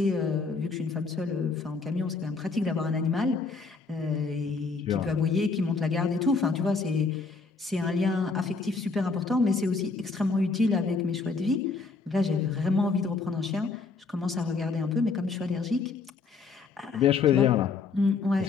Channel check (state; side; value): quieter; right; 4.4 dB